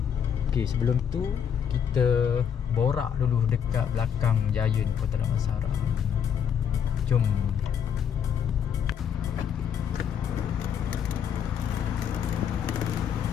Okay, sebelum tu kita borak dulu dekat belakang Giant Kota Damansara. Jom.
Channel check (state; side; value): quieter; right; 8.1 dB